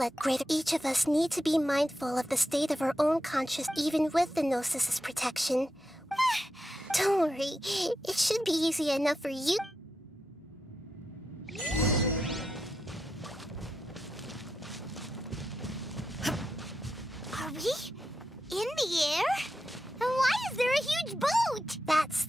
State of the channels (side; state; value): both; normal; correlation 0.87